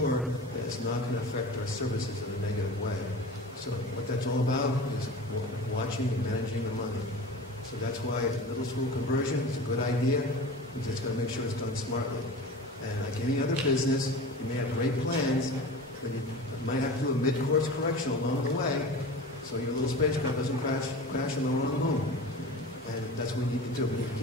that it's not going to affect our services in a negative way. So what that's all about is watching and managing the money. So that's why middle school conversion is a good idea. We just got to make sure it's done smartly. And like any other business, you may have great plans, but you might have to do a mid-course correction along the way so your little spacecraft doesn't crash on the wrong moon. And that's what we need to do. We need to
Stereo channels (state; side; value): normal; both; correlation 0.34